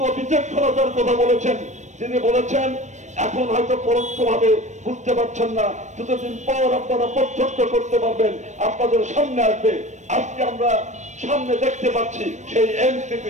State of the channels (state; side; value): late; left; 0.34 ms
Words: বিচক্ষণতার কথা বলেছেন। তিনি বলেছেন, এখন হয়তো পরোক্ষভাবে বুঝতে পারছেন না, কিছুদিন পর আপনারা প্রত্যক্ষ করতে পারবেন, আপনাদের সামনে আসবে। আজকে আমরা সামনে দেখতে পাচ্ছি সেই